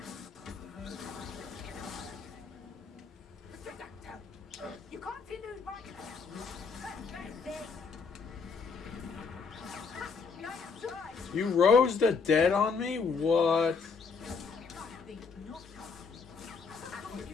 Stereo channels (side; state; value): right; quieter; 5.1 dB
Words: You continue my... You rose the dead on me? What?